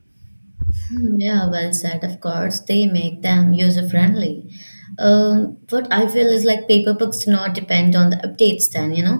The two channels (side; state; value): both; inverted; correlation -1.00